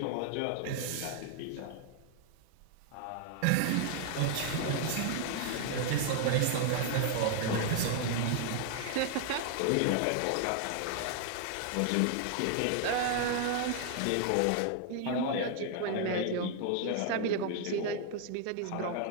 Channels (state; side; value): different; both; correlation 0.00